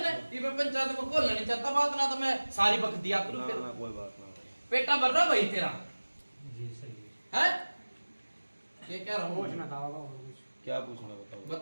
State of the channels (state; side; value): inverted; both; correlation -1.00